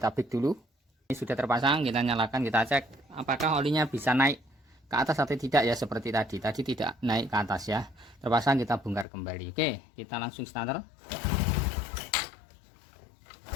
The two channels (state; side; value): drops out; right; at 9.1 s